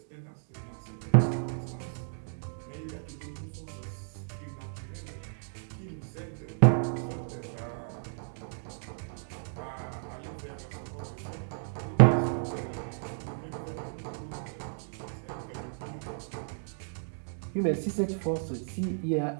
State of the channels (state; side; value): silent; left; digital silence